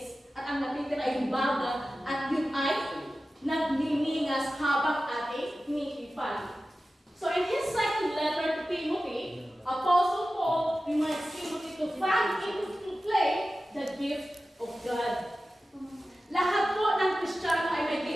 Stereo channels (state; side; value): normal; both; correlation 0.95